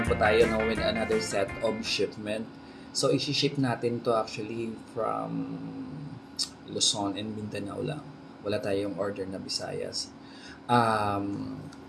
po tayo no, with another set of shipment. So, isi-ship natin to actually from Luzon and Mindanao lang. Wala tayong order na Visayas.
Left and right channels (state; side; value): identical; both; correlation 1.00